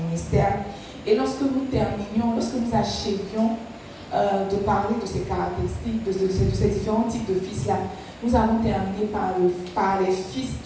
ministère. Et lorsque nous achevions de parler de ces caractéristiques, de ces différents types de fils-là, nous avons terminé par les fils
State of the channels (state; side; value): identical; both; correlation 1.00